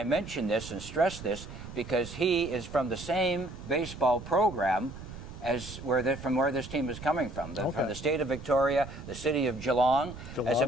mention this and stress this because he is from the same baseball program as from where this team is coming from. From the state of Victoria, the city of Geelong. As a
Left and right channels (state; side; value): noise; right; rumble, 12 dB below the sound